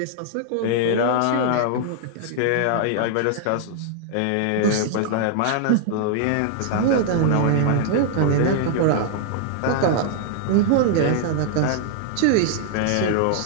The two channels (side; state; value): both; different; correlation -0.01